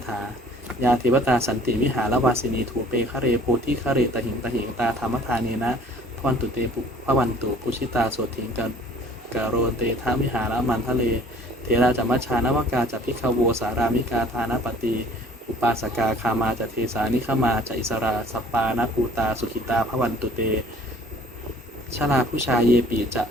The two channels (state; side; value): normal; both; correlation 0.53